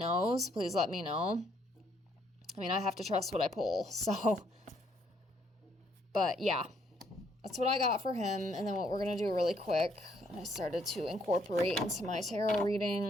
please let me know. I mean, I have to trust what I pull, so. But yeah, that's what I got for him. And then what we're going to do really quick, I started to incorporate into my tarot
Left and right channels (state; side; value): normal; both; correlation 0.69